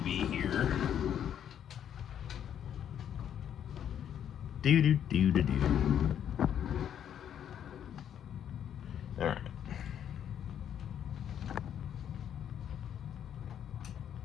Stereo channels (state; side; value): quieter; right; 9.5 dB